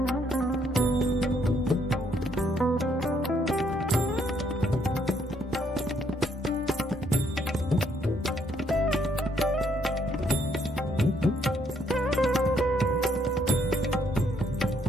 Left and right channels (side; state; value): both; normal; correlation 0.70